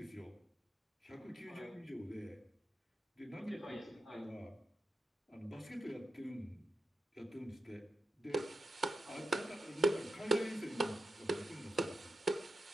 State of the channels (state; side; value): normal; both; correlation 0.88